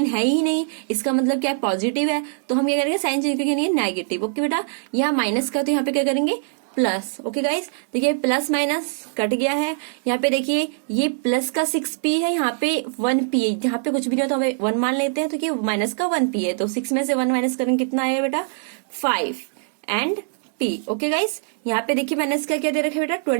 है ही नहीं, इसका मतलब क्या है, पॉजिटिव है, तो हम क्या करेंगे, साइन चेंज करके नहीं, नेगेटिव। ओके बेटा, यहाँ माइनस का तो यहाँ पे क्या करेंगे, प्लस। ओके गाइस, देखिए प्लस माइनस कट गया है। यहाँ पे देखिए ये प्लस का 6p है, यहाँ पे 1p है, यहाँ पे कुछ भी नहीं होता हमें 1 मान लेते हैं, तो ये माइनस का 1p है, तो 6 में से 1 माइनस करेंगे कितना आएगा बेटा, 5 एंड p। ओके गाइस, यहाँ पे देखिए माइनस का क्या दे रखा है बेटा,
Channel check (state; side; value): silent; left; digital silence